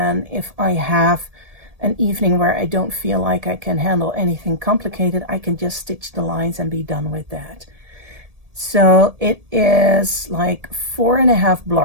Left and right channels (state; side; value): late; left; 1.7 ms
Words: if I have an evening where I don't feel like I can handle anything complicated, I can just stitch the lines and be done with that. So it is like 4.5